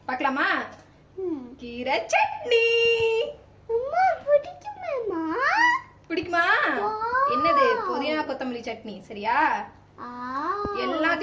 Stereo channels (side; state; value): both; identical; correlation 1.00